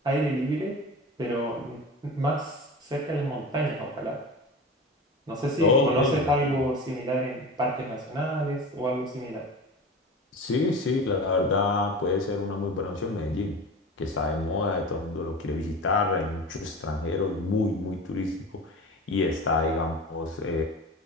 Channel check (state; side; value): normal; both; correlation 0.31